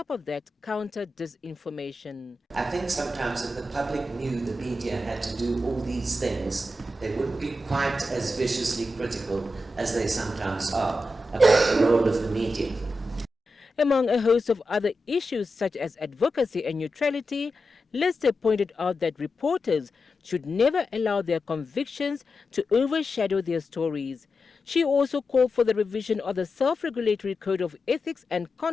of that, counter disinformation. I think sometimes if the public knew the media had to do all these things, they wouldn't be quite as viciously critical as they sometimes are about the role of the media. Among a host of other issues such as advocacy and neutrality, Lister pointed out that reporters should never allow their convictions to overshadow their stories. She also called for the revision of the Self-Regulatory Code of Ethics and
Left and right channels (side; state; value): both; normal; correlation 0.90